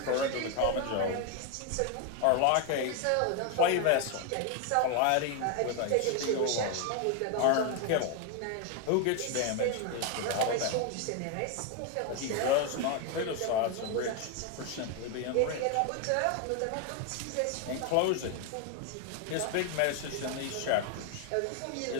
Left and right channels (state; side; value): different; both; correlation 0.01